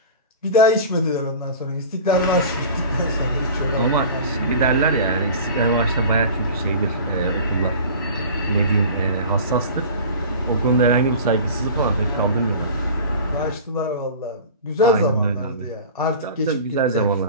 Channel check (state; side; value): inverted; both; correlation -0.38